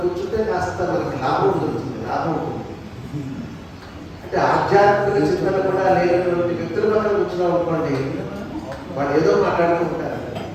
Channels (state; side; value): identical; both; correlation 1.00